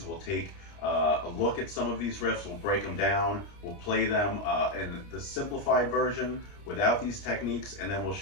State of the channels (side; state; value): right; late; 29 ms